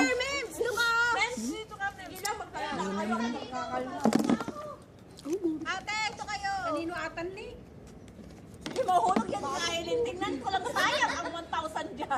Dito ka. Dito ka. Dito ka. Ate, ito kayo. Kanino atan ni? Sige, mahulog yan kainin. Tingnan ko lang, sayang ang 1,000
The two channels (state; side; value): identical; both; correlation 1.00